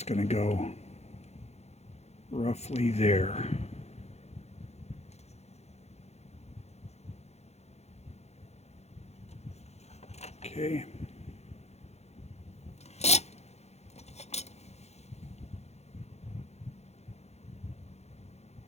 going to go roughly there. Okay.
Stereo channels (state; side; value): late; right; 0.31 ms